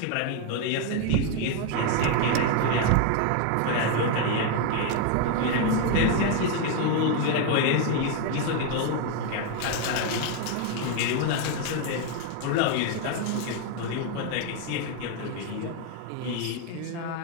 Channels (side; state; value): both; different; correlation 0.01